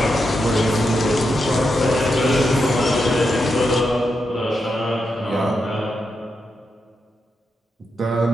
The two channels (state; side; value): normal; both; correlation 0.85